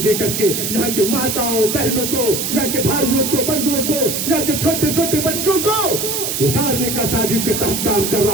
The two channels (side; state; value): right; noise; hiss, 2 dB below the sound